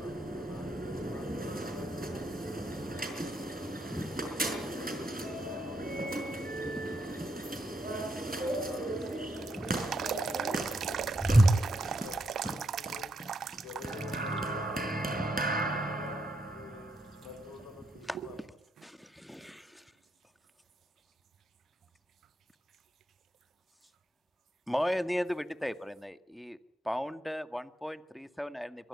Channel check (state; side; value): normal; both; correlation 0.80